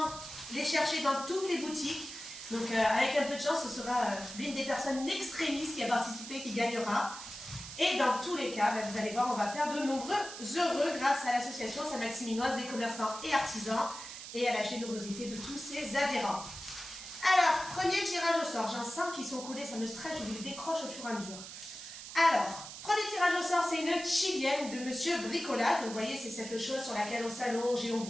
les chercher dans toutes les boutiques. Donc, avec un peu de chance, ce sera l'une des personnes extrémistes qui a participé qui gagnera. Et dans tous les cas, vous allez voir, on va faire de nombreux heureux grâce à l'association Saint-Maximinoise des commerçants et artisans et à la générosité de tous ses adhérents. Alors, premier tirage au sort. J'en sens qu'ils sont collés, ça me stresse, je vous les décroche au fur et à mesure. Alors, premier tirage au sort, c'est une chilienne de Monsieur Bricolade. Donc, vous voyez, c'est cette chose sur laquelle on s'allonge et on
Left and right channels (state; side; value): noise; right; hiss, 11 dB below the sound